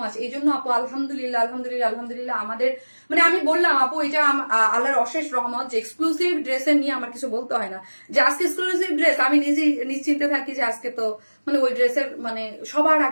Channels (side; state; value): both; inverted; correlation -1.00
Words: মাচ। এই জন্য আপু আলহামদুলিল্লাহ আলহামদুলিল্লাহ আলহামদুলিল্লাহ আমাদের মানে আমি বললাম আপু এটা আল্লাহর অশেষ রহমত যে এক্সক্লুসিভ ড্রেসের নিয়ে আমার কিছু বলতে হয় না। যে আজকে এক্সক্লুসিভ ড্রেস আমি নিজেই নিশ্চিন্তে থাকি যে আজকে তো মানে ওই ড্রেসের মানে সবার